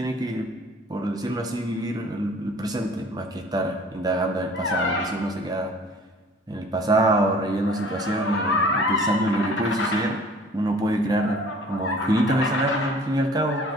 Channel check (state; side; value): normal; both; correlation 0.50